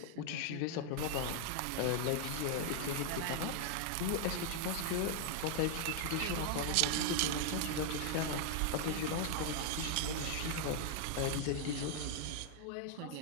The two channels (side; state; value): both; different; correlation 0.00